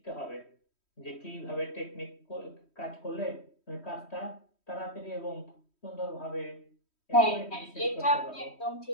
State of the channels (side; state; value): right; late; 3.1 ms